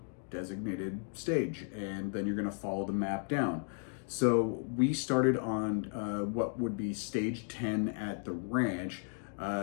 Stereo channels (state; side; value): silent; right; 55 dB below the other